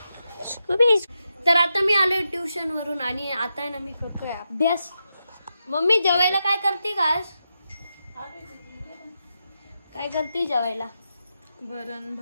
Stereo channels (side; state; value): both; inverted; correlation -0.87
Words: तर आता मी आलोय ट्युशन वरून आणि आता आहे ना मी करतोय अभ्यास. मम्मी जेवायला काय करते का? काय करते जेवायला? वरण